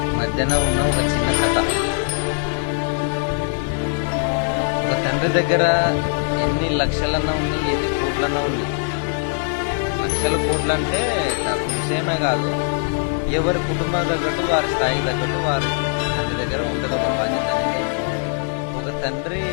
మధ్యన ఉన్న ఒక చిన్న కథ. ఒక తండ్రి దగ్గర ఎన్ని లక్షలన్నా ఉన్నాయి, ఎన్ని కోట్లన్నా ఉన్నాయి. లక్షల కోట్లు అంటే డబ్బు విషయమే కాదు, ఎవరి కుటుంబం తగ్గట్టు వారి స్థాయికి తగ్గట్టు వారి తండ్రి దగ్గర ఉంటుంది ఒక బాధ్యత అనేది. ఒక తండ్రి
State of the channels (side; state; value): right; silent; 65 dB below the other